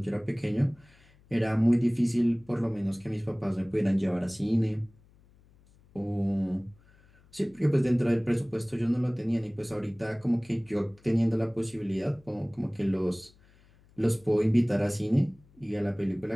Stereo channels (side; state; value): left; noise; hum, 29 dB below the sound